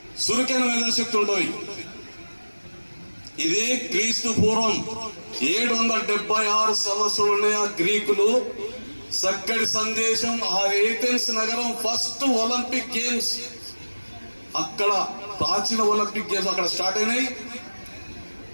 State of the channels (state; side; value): inverted; both; correlation -1.00